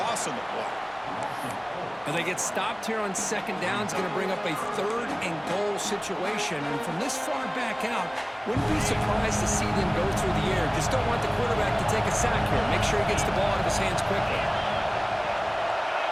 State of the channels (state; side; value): identical; both; correlation 1.00